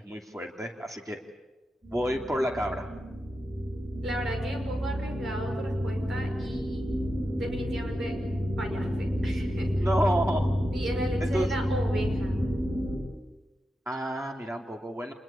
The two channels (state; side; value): normal; both; correlation 0.89